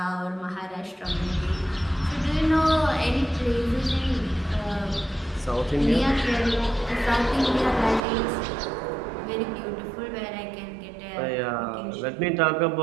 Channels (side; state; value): left; drops out; at 8.0 s